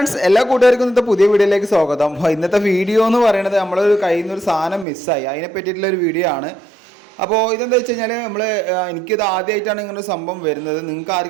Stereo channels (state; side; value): drops out; left; at 4.9 s